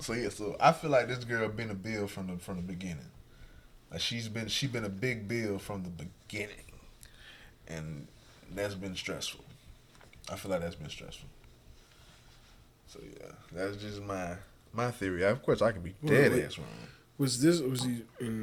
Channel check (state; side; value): identical; both; correlation 1.00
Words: So yeah. So I feel like this girl been a bill from the beginning. Like she been a big bill from the beginning, and that's been stressful. I feel like that's been stressful. So yeah, that's just my theory. Of course, I can be dead ass wrong. Was he